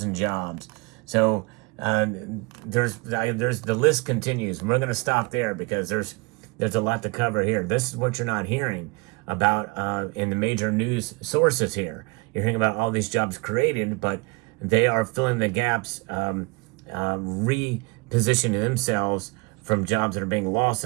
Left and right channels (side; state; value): left; quieter; 27.7 dB